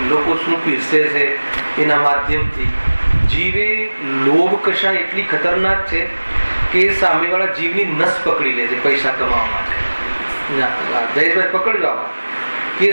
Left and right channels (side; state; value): both; inverted; correlation -1.00